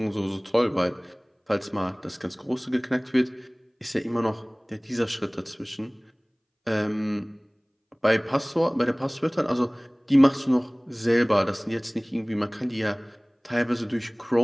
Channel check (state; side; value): identical; both; correlation 1.00